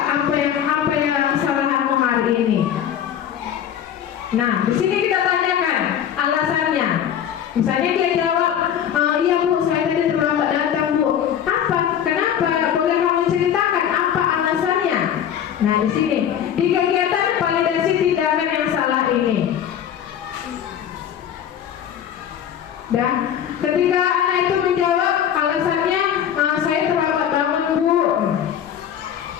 apa yang kesalahanmu hari ini? Nah, di sini kita tanyakan alasannya. Misalnya dia jawab, iya bu, saya tadi terlambat datang bu. Apa? Kenapa? Boleh kamu ceritakan apa alasannya? Nah, di sini di kegiatan validasi tindakan yang salah ini. Dan ketika anak itu menjawab alasannya, saya terlambat bangun bu.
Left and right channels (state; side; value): quieter; right; 9.5 dB